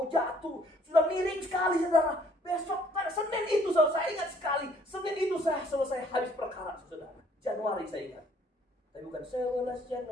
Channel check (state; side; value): normal; both; correlation 0.61